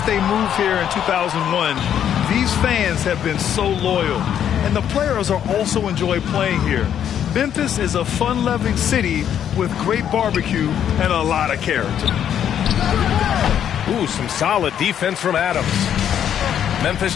they moved here in 2001, these fans have been so loyal. And the players are also enjoy playing here. Memphis is a fun-loving city with great barbecue and a lot of character. Ooh, some solid defense from Adams. Memphis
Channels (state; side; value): quieter; right; 9.5 dB